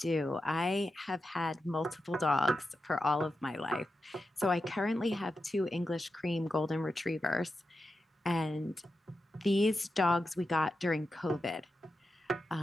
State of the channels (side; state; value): both; normal; correlation 0.90